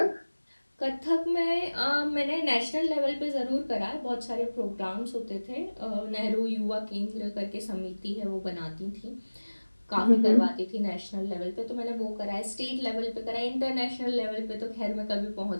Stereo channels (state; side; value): inverted; both; correlation -1.00